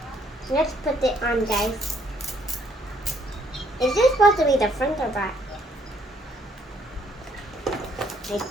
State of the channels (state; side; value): normal; both; correlation 0.67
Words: Let's put it on, guys. Is this supposed to be the front or back? I